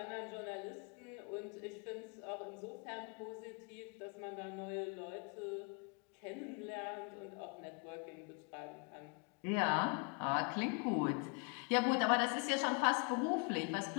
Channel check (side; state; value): right; quieter; 34.9 dB